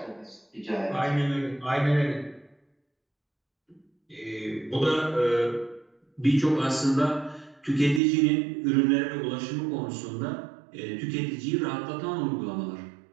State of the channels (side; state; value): left; drops out; at 8.0 s